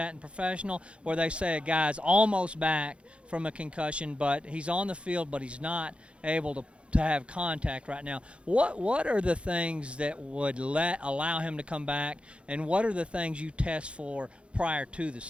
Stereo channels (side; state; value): left; late; 0.059 ms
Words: in professional, where they say a guy's almost back from a concussion, but he's on the field, but he's not able to have contact right now. What are the things that would allow him to come back, and what are the things you test for prior to the